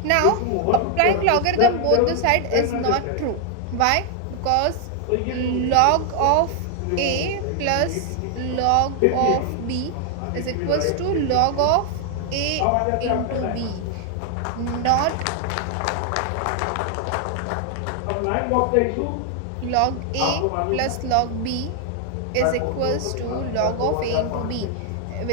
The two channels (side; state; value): both; different; correlation 0.00